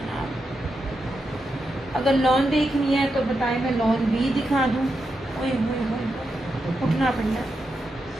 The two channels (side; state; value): both; normal; correlation 0.86